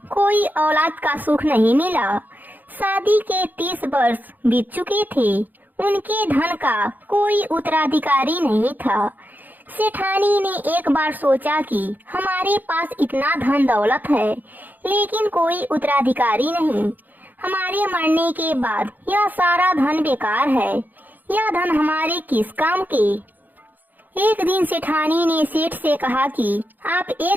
कोई औलाद का सुख नहीं मिला। शादी के 30 वर्ष बीत चुके थे। उनके धन का कोई उत्तराधिकारी नहीं था। सेठानी ने एक बार सोचा कि हमारे पास इतना धन दौलत है, लेकिन कोई उत्तराधिकारी नहीं। हमारे मरने के बाद यह सारा धन बेकार है। यह धन हमारे किस काम के। एक दिन सेठानी ने सेठ से कहा कि आप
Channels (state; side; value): late; left; 0.085 ms